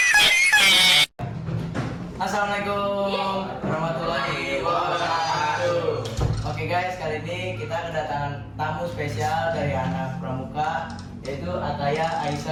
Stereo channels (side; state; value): both; identical; correlation 1.00